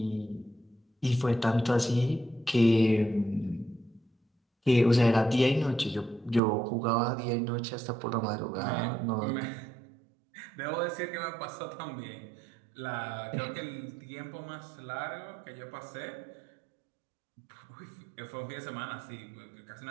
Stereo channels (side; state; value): left; drops out; at 6.4 s